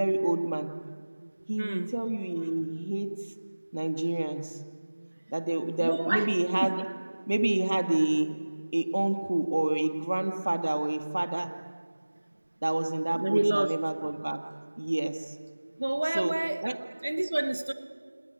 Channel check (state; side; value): inverted; both; correlation -1.00